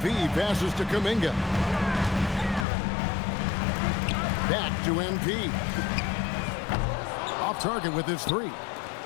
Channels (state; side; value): drops out; right; at 2.7 s